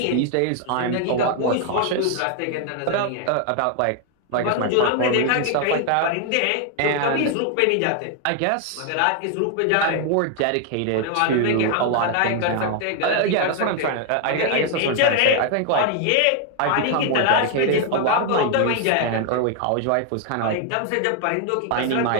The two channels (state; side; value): different; both; correlation 0.00